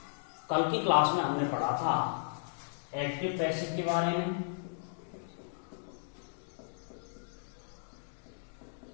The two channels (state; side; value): silent; right; digital silence